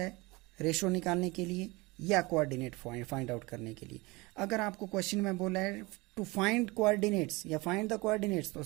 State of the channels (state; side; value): quieter; left; 23.8 dB